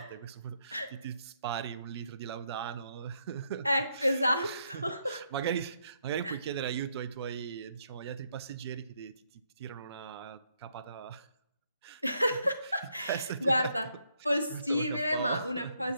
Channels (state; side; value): inverted; both; correlation -0.75